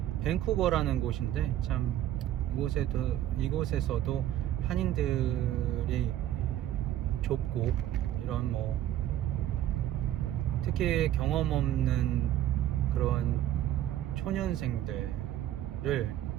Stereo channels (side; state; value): left; quieter; 12.4 dB